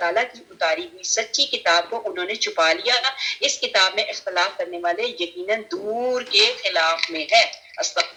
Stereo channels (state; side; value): identical; both; correlation 1.00